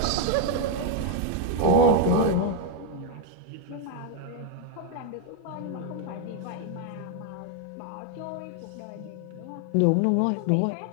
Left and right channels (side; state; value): both; different; correlation 0.01